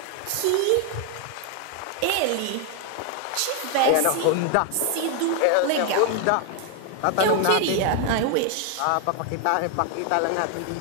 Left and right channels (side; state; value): both; different; correlation 0.00